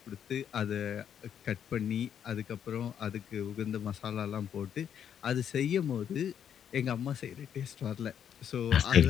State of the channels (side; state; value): right; quieter; 8.8 dB